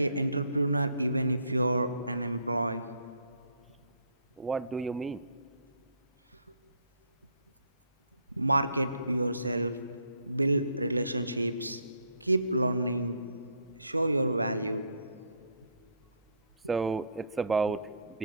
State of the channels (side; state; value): both; inverted; correlation -0.60